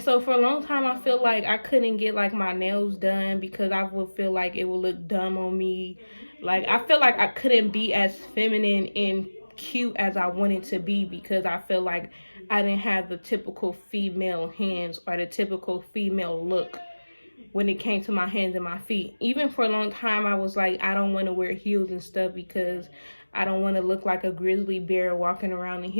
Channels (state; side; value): inverted; both; correlation -1.00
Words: so for a long time, I feel like I couldn't get like my nails done because I would feel like it would look dumb on me. Like, I feel like I couldn't be as feminine and cute as I wanted to be because I feel like I didn't have the typical female hands or the typical female look when it came to my hands and my feet. Even for a long time, I was like, I don't want to wear heels and stuff because I don't want to look like a grizzly bear walking around in